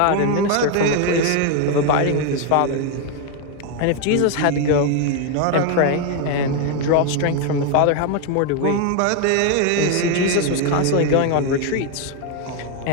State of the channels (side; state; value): both; different; correlation 0.01